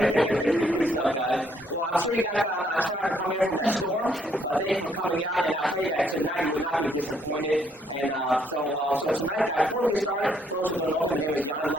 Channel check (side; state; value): both; normal; correlation 0.69